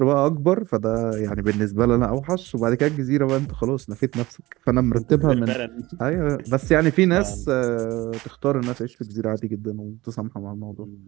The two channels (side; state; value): left; quieter; 19.4 dB